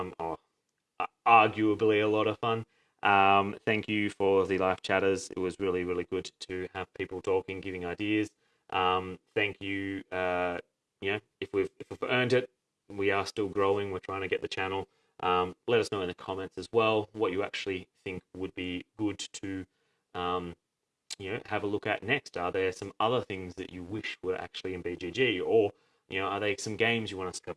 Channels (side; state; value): both; identical; correlation 1.00